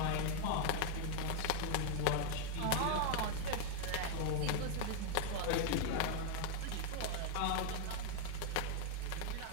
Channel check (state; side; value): different; both; correlation 0.00